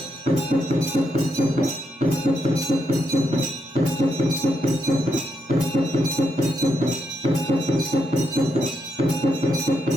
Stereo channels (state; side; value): normal; both; correlation 0.80